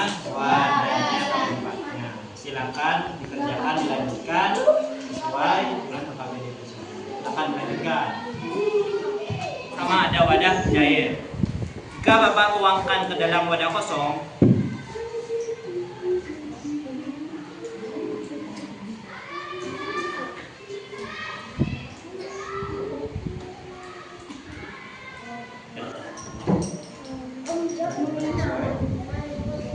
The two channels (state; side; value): identical; both; correlation 1.00